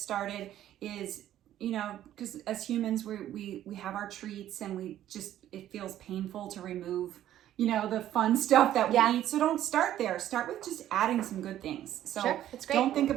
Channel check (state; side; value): quieter; left; 12.2 dB